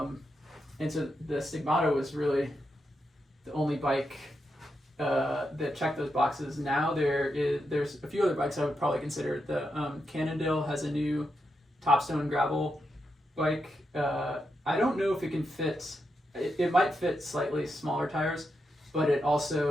so the Stigmata was really the only bike that checked those boxes. Now there's a few other bikes I would probably consider. The Cannondale has a new Topstone gravel bike. I don't know if it can fit. It might fit slightly smaller tires, but it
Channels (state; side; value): normal; both; correlation 0.85